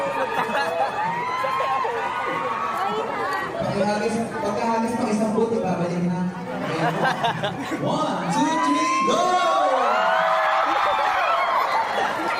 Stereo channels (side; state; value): both; identical; correlation 1.00